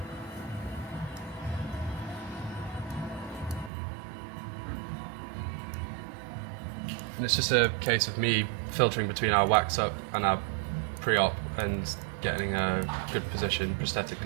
And it's just a case of me filtering between our wax up and our pre-op and getting a good position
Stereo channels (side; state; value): left; drops out; at 3.7 s